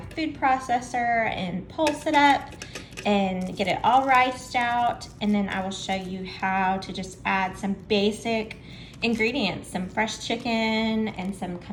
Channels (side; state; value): both; identical; correlation 1.00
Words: food processor and pulse it up and get it all riced out, and then I will show you how to just add some basic ingredients, some fresh chicken and some